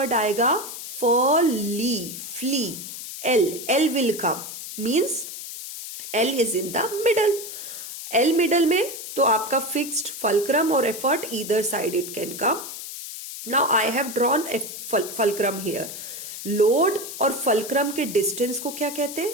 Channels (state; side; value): noise; left; hiss, 9 dB below the sound